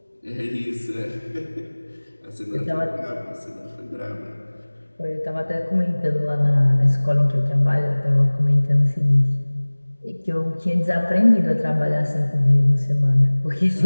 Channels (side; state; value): both; inverted; correlation -1.00